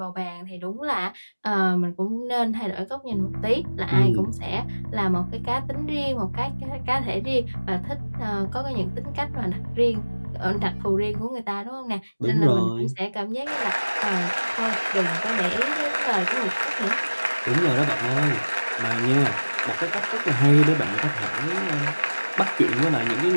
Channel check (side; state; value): both; inverted; correlation -1.00